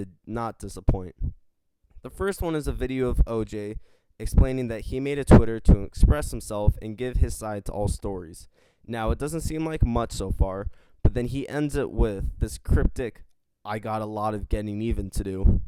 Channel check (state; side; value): identical; both; correlation 1.00